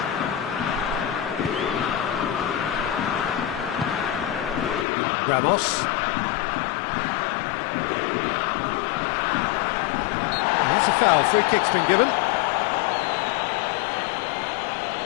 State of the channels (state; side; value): drops out; right; at 4.9 s